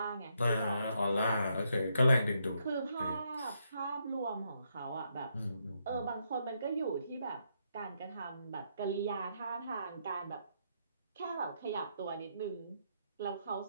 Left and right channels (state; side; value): inverted; both; correlation -0.77